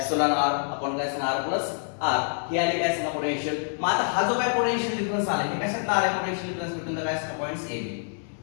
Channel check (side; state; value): right; silent; 60 dB below the other